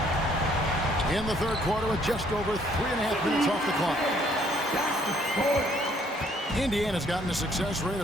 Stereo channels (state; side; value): normal; both; correlation 0.65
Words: In the third quarter with just over 3.5 minutes off the clock. Indiana's gotten a success rate